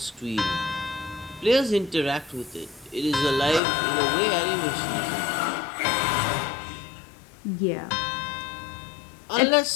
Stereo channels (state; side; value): drops out; right; at 3.6 s